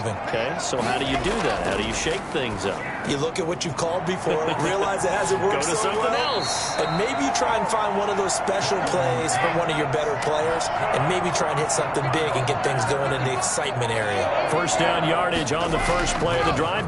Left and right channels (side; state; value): both; identical; correlation 1.00